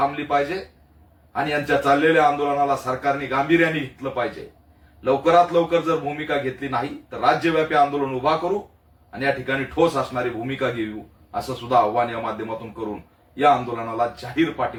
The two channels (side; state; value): both; identical; correlation 1.00